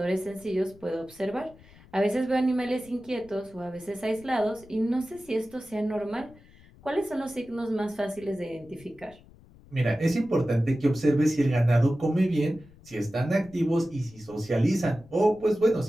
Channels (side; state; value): left; noise; rumble, 24 dB below the sound